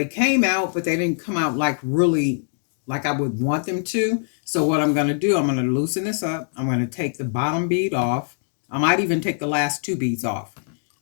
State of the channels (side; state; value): right; silent; digital silence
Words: came out, but they didn't come out like really like I would want them to. So what I'm going to do, I'm going to loosen this up. I'm going to take the bottom bead off. I might even take the last two beads off